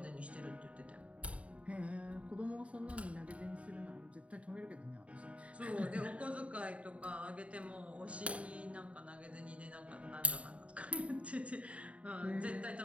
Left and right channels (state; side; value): late; left; 0.065 ms